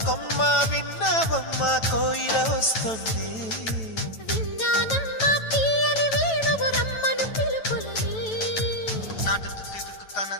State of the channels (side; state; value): right; late; 9.1 ms